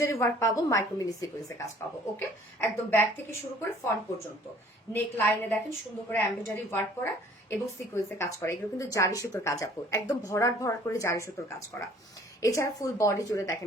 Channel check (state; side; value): normal; both; correlation 0.54